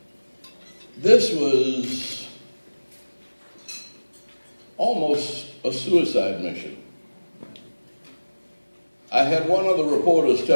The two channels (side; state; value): both; inverted; correlation -1.00